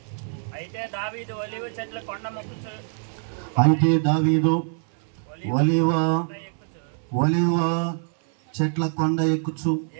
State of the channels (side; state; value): left; silent; 58 dB below the other